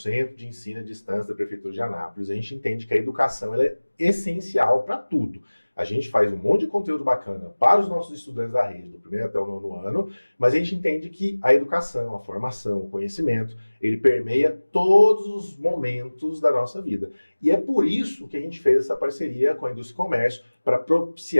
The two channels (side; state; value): both; inverted; correlation -1.00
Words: de Ensino à Distância da Prefeitura de Anápolis, a gente entende que a educação ela é essencial para tudo. A gente faz um monte de conteúdo bacana para os nossos estudantes da rede, do primeiro até o nono ano, mas a gente entende que a educação, a formação, o conhecimento, ele permeia todos os momentos da nossa vida. E é por isso que a gente fez essa parceria com a Indústria e Comércio para